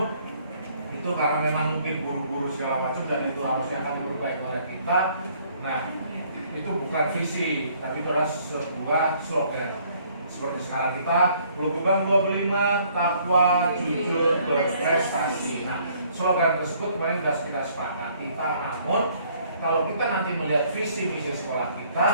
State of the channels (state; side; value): inverted; both; correlation -0.62